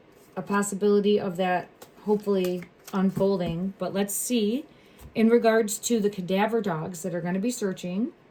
a possibility of that hopefully unfolding. But let's see, in regards to the cadaver dogs that are going to be searching,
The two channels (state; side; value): identical; both; correlation 1.00